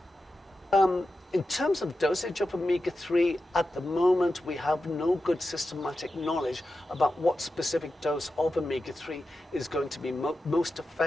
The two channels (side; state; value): both; normal; correlation 0.91